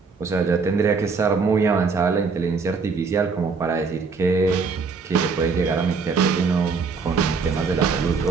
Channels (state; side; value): quieter; left; 4.9 dB